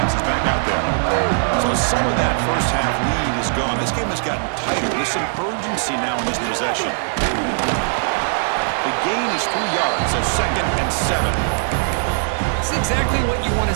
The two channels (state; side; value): silent; left; digital silence